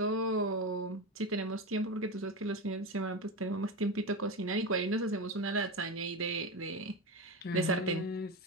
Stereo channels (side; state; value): both; normal; correlation 0.19